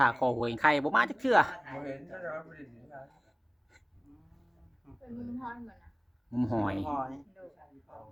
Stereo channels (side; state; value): both; identical; correlation 1.00